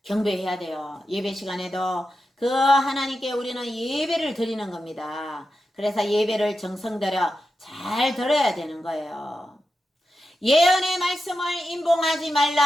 경배해야 돼요. 예배 시간에도 그 하나님께 우리는 예배를 드리는 겁니다. 그래서 예배를 정성 들여 잘 들어야 되는 거예요. 예언의 말씀을 임봉하지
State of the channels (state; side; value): normal; both; correlation 0.90